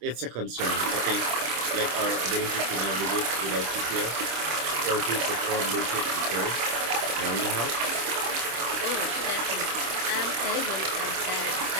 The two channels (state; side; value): late; left; 26 ms